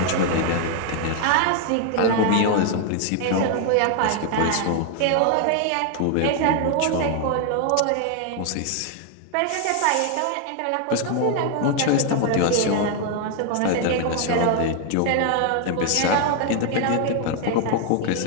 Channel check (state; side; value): different; both; correlation 0.00